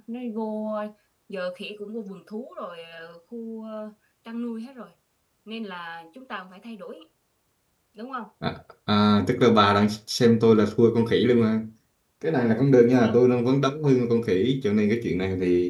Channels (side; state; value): both; identical; correlation 1.00